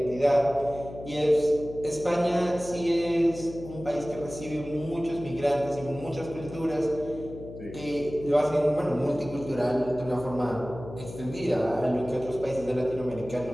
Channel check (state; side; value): noise; left; hum, 13 dB below the sound